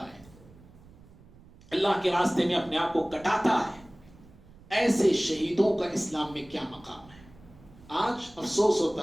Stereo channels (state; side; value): noise; right; rumble, 23 dB below the sound